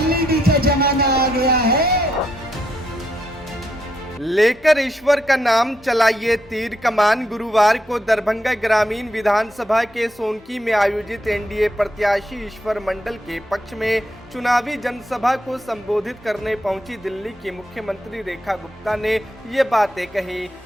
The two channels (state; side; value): normal; both; correlation 0.78